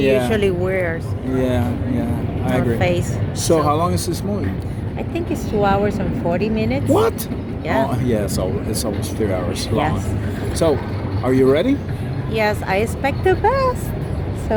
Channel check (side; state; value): both; identical; correlation 1.00